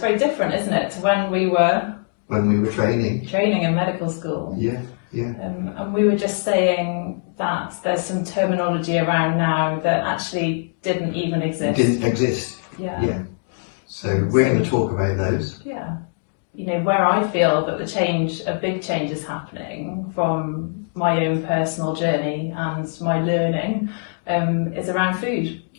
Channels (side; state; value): right; silent; digital silence